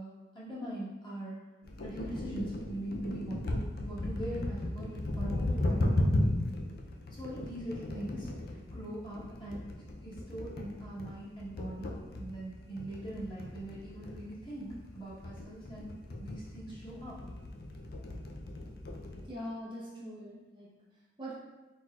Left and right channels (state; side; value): normal; both; correlation 0.88